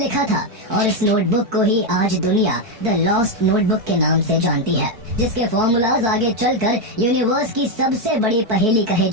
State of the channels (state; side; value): late; left; 4.6 ms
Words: था और इस नोटबुक को ही आज दुनिया द लॉस्ट नोटबुक के नाम से जानती है, जिसके फॉर्मूलाज आगे चलकर यूनिवर्स की सबसे बड़ी पहेली कहे